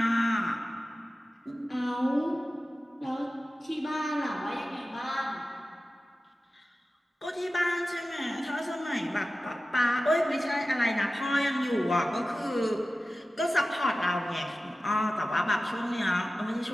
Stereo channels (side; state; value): both; normal; correlation 0.95